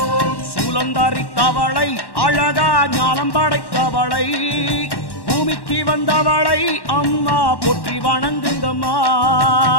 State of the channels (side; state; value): right; late; 1.1 ms